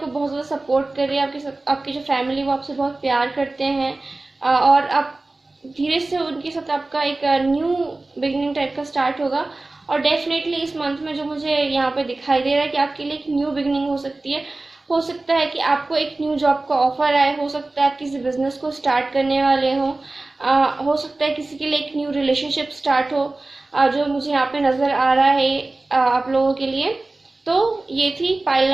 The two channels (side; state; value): left; quieter; 3.1 dB